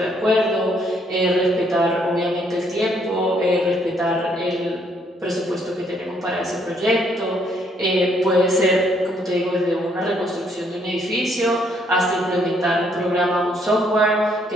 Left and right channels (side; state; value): both; normal; correlation 0.69